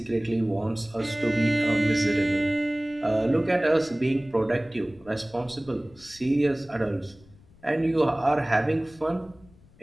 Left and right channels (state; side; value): noise; left; rumble, 26 dB below the sound